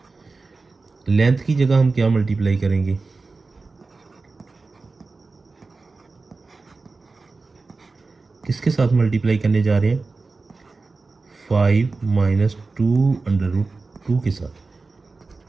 लेंथ की जगह हम क्या मल्टीप्लाई करेंगे, किसके साथ मल्टीप्लाई करने जा रहे हैं, 5 माइनस 2 अंडर रूट 2 के साथ।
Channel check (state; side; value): quieter; left; 3.9 dB